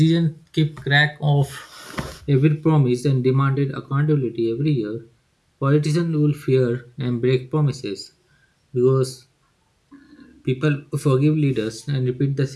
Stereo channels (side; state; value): both; identical; correlation 1.00